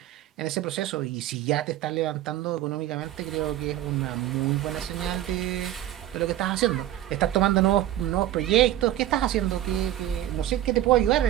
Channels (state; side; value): quieter; left; 13.2 dB